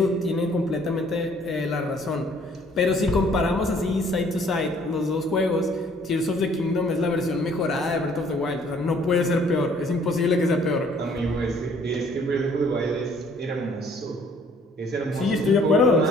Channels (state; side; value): normal; both; correlation 0.59